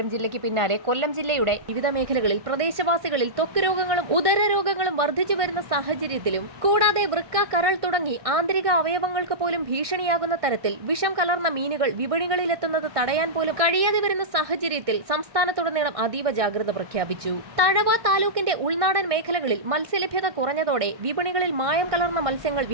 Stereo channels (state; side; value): late; left; 1.6 ms